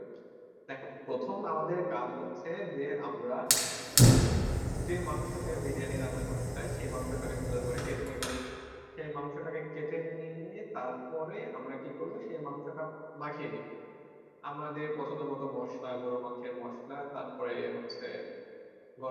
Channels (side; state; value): both; identical; correlation 1.00